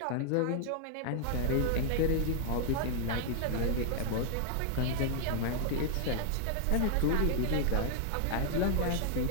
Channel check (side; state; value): both; different; correlation 0.00